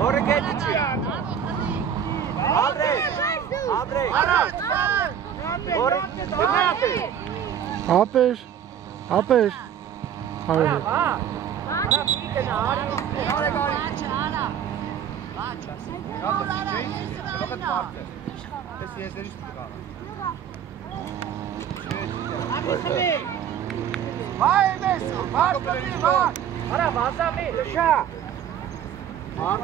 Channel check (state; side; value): quieter; left; 8.8 dB